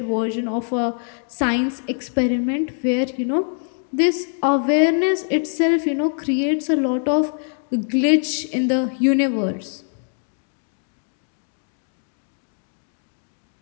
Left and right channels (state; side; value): silent; right; 62 dB below the other